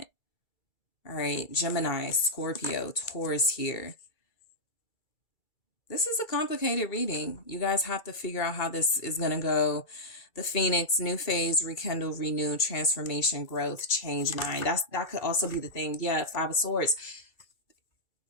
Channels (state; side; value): late; right; 2.3 ms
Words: All right. Gemini, Scorpio, Taurus here. This is a complicated reading. You guys have to figure out how this is going to go. The Phoenix, new phase, rekindle, renew, transformation, growth, change mind. That could also be the thing. Yeah, 5 of Swords.